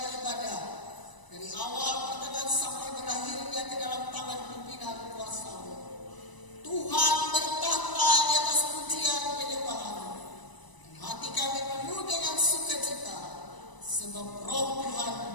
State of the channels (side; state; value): right; late; 1.0 ms